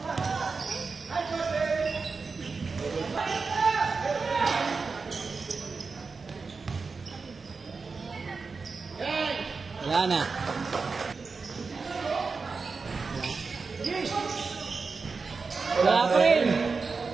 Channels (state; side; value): quieter; left; 4.6 dB